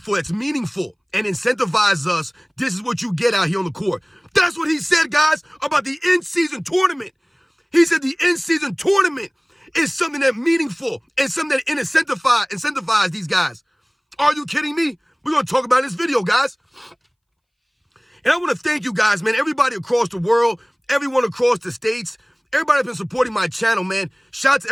that's meaningful and incentivize us, this is what you get out here on the court. That's what he said, guys, about the in-season tournament. He said the in-season tournament is something that's meaningful and something that incentivize these guys. Are you kidding me? We're going to talk about in this video, guys. And I want to thank you guys, man, everybody across the world, everyone across the states, everybody that's been supporting my channel, man. Shout out to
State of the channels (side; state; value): both; identical; correlation 1.00